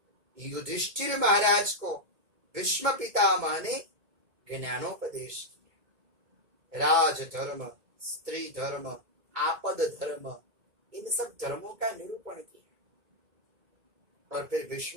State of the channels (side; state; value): left; late; 2.2 ms